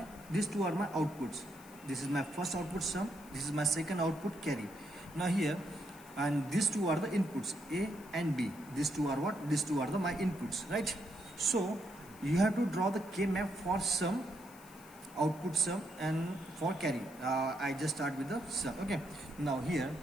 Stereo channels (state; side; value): noise; left; hiss, 22 dB below the sound